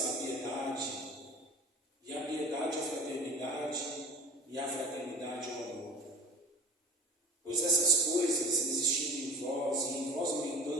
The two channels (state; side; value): normal; both; correlation 0.39